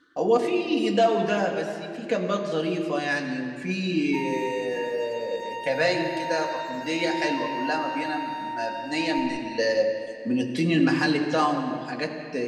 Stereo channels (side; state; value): both; identical; correlation 1.00